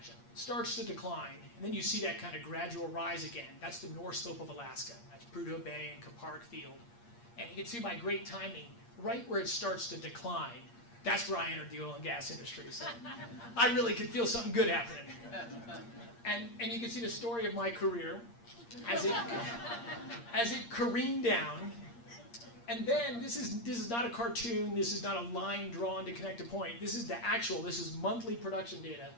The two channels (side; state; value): right; late; 8.6 ms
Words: Starts to decline, and then you see that kind of gradual rise again. That's the North Slope of Alaska. That's Prudhoe Bay and Kupark Field. And you can see by great timing, right where it starts to decline, that's where I entered the oil and gas industry. So I really could feel something good happening. And you can see the story of my career as it careened down. And then this is not a cartoon, this is not a line drawn to connect a point. This is this is monthly production data.